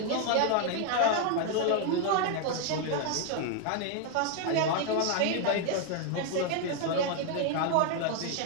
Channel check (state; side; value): different; both; correlation 0.00